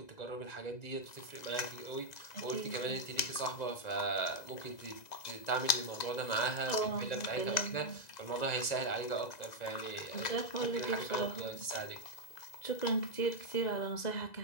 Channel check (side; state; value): right; late; 2.0 ms